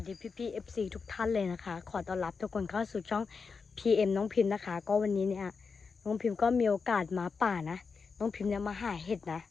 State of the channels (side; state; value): right; quieter; 5.1 dB